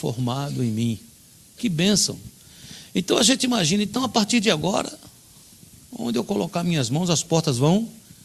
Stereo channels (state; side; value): identical; both; correlation 1.00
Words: em mim. Que bênção! Então a gente imagina, então a partir de agora, onde eu colocar minhas mãos, as portas vão